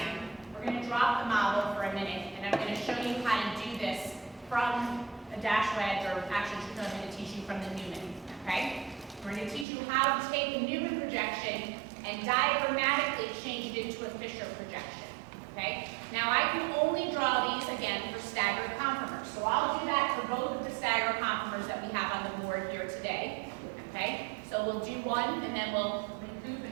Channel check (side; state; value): left; drops out; at 9.7 s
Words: we're going to drop the model for a minute, and I'm going to show you how to do this from a dash wedge, or actually, I'm going to teach you from the Newman, okay? We're going to teach you how to take a Newman projection and diagrammatically change it into a Fisher projection, okay? Now, I can only draw these, again, for staggered conformers. So I'll do that for both of the staggered conformers that we have on the board here today, okay? So we'll do one, and then we'll recoup